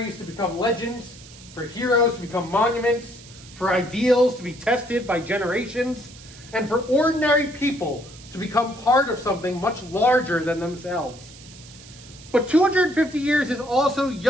to become legends, for heroes to become monuments, for ideals to be tested by generations, and for ordinary people to become part of something much larger than themselves. But 250 years is also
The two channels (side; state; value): right; noise; hiss, 20 dB below the sound